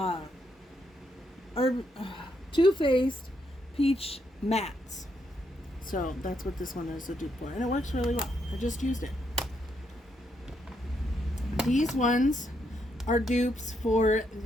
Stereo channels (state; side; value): normal; both; correlation 0.77